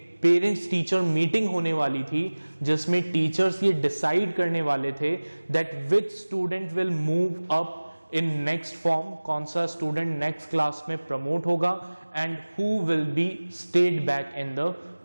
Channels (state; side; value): inverted; both; correlation -1.00